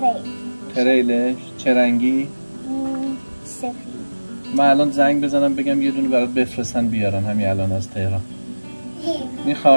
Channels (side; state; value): both; inverted; correlation -1.00